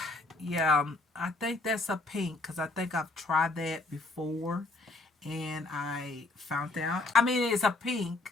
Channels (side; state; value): right; quieter; 3.1 dB